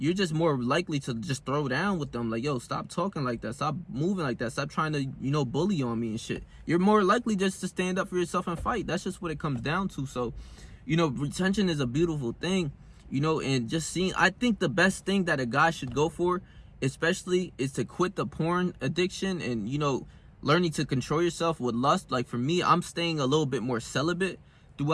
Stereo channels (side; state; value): both; identical; correlation 1.00